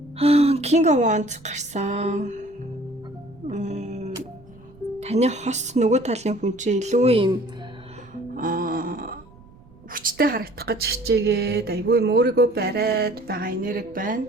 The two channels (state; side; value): noise; right; rumble, 24 dB below the sound